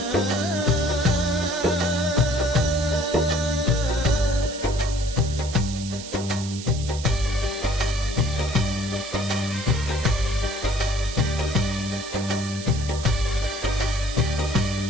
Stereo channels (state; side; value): noise; right; hiss, 12 dB below the sound